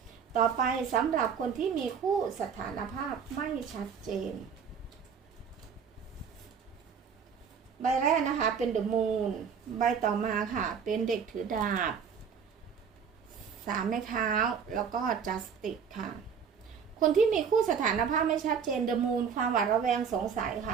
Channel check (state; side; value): quieter; left; 6.7 dB